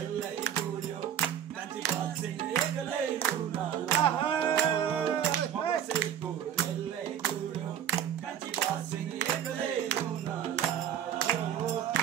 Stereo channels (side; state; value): left; quieter; 9.6 dB